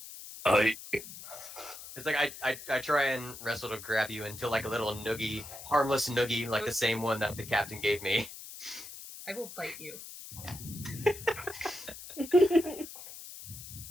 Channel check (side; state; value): left; noise; hiss, 13 dB below the sound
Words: It's like I try and wrestle to grab you into like a little noogie, harmless noogie, like the same one that the captain gave me. I will bite you.